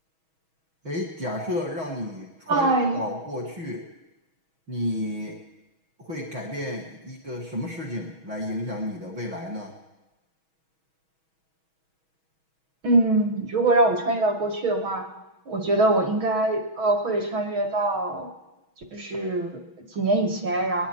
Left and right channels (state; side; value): late; left; 6.2 ms